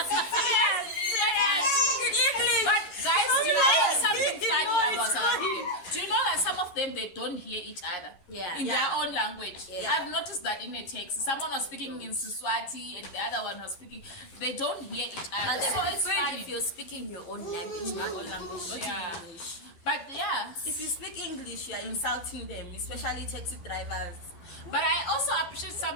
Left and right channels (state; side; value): late; right; 11 ms